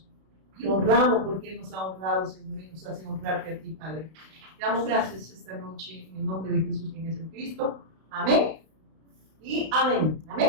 y honramos, porque Él nos ha honrado, Señor, y nos hace honrarte a ti, Padre. Te damos gracias esta noche en el nombre de Jesús, quien es el Cristo. Amén y amén.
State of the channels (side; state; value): left; late; 32 ms